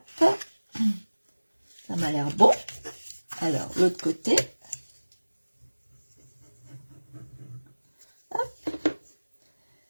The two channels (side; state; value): both; inverted; correlation -1.00